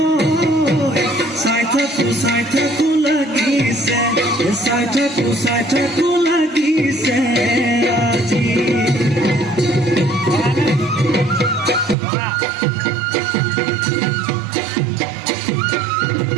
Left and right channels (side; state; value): left; drops out; at 12.0 s